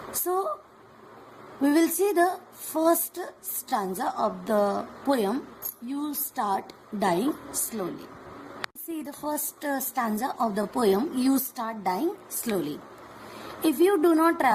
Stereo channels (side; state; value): both; identical; correlation 1.00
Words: So, we will see the first stanza of the poem, You Start Dying Slowly. See the first stanza of the poem, You Start Dying Slowly. If you do not